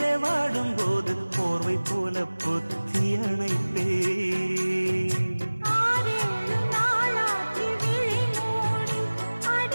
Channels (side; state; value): both; inverted; correlation -1.00